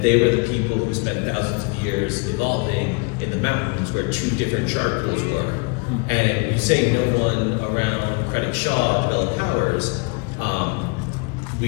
they were the people who spent thousands of years evolving in the mountains where two different shard pools were. And you say no one around Krennic Shaw developed powers.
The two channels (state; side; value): quieter; right; 30.9 dB